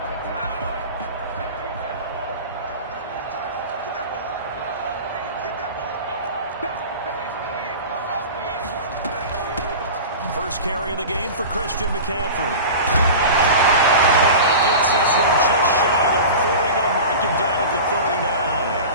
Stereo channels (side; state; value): both; inverted; correlation -0.32